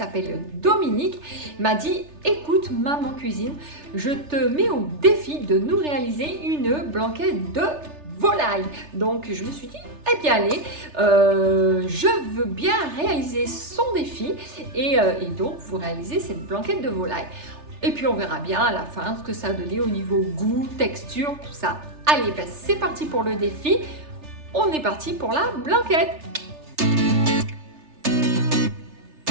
Dominique, m'a dit écoute maman cuisine, je te mets au défi de nous réaliser une blanquette de volaille. Donc je me suis dit eh bien allez, je veux bien réaliser son défi et donc vous réalisez cette blanquette de volaille. Et puis on verra bien à la fin ce que ça a donné au niveau goût, texture, tout ça. Allez, ben c'est parti pour le défi. On est parti pour la blanquette.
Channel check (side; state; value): left; late; 3.3 ms